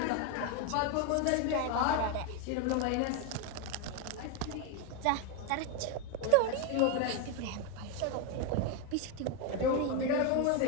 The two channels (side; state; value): both; different; correlation 0.02